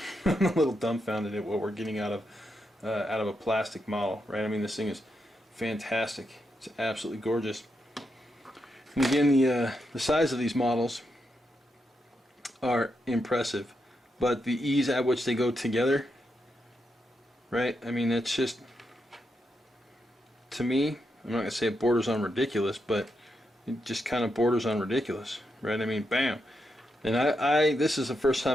I'm a little dumbfounded at what we're getting out of a plastic model, right? I mean, this thing is fantastic. It's absolutely gorgeous. And again, the size of these models are impressive, but the ease at which they go together, right? I mean, that's just, to me, I'm not gonna say it borders on ridiculous, but it just kind of borders on ridiculous, right? I mean, bam. And this is the first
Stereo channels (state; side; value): normal; both; correlation 0.83